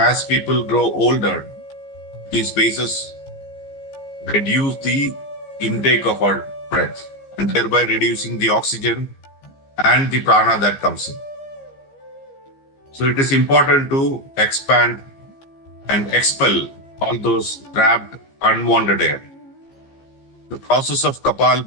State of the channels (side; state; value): right; late; 15 ms